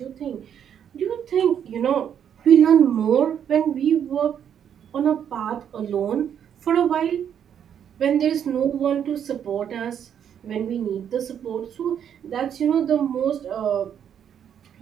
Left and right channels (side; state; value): left; quieter; 8.8 dB